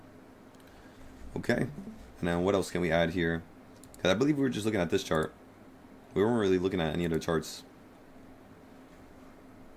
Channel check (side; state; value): both; identical; correlation 1.00